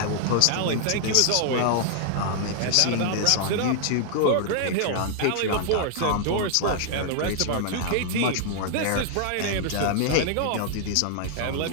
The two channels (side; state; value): both; different; correlation -0.01